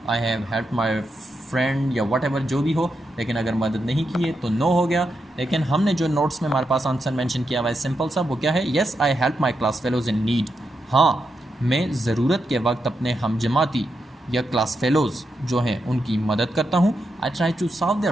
I have help my friend या वट एवर जो भी हो। लेकिन अगर मदद नहीं की है तो नो हो गया। लेकिन हमने जो नोट्स में हमारे पास आंसर मेंशन किया हुआ है सिंपल सा, वो क्या है, yes I help my class fellows in need. हाँ, मैं ज़रूरत के वक्त अपने हमजमाती या क्लास फेलोज़ जो हैं उनकी मदद करता हूँ। I try to solve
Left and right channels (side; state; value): both; normal; correlation 0.85